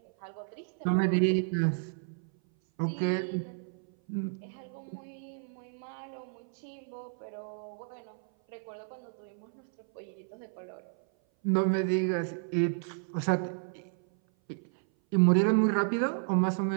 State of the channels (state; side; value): silent; left; 57 dB below the other